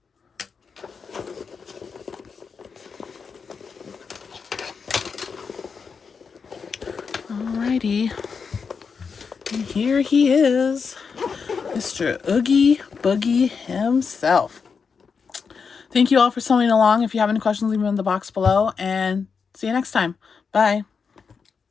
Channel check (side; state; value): right; quieter; 5.6 dB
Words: Alrighty. And here he is, Mr. Oogie Boogie himself. Thank you all for sewing along. If you have any questions, leave them in the box below, and see you next time. Bye.